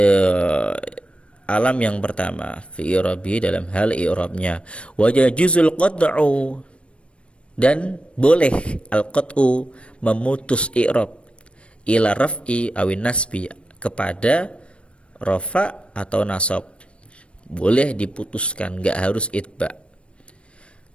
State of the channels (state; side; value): late; right; 0.060 ms